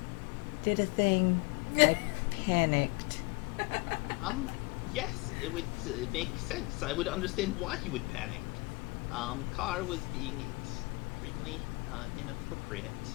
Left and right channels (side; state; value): right; quieter; 26.7 dB